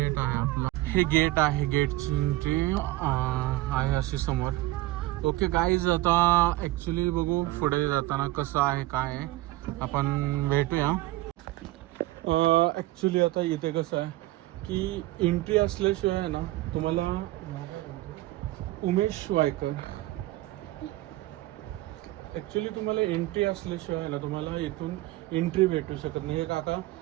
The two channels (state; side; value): quieter; left; 17.7 dB